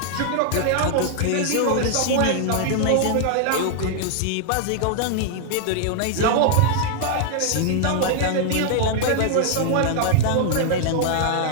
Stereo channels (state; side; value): different; both; correlation -0.01